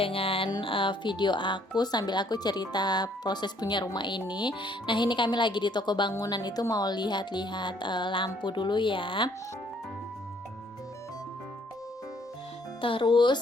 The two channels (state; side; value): normal; both; correlation 0.64